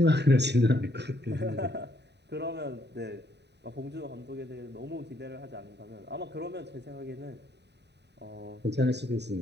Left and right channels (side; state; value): left; late; 0.50 ms